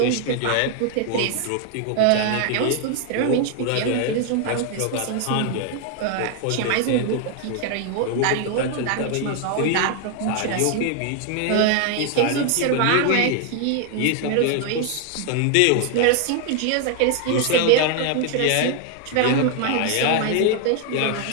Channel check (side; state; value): both; different; correlation 0.00